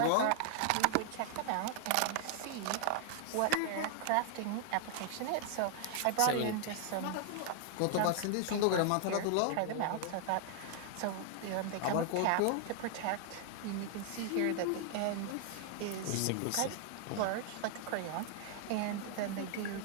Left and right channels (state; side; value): different; both; correlation 0.00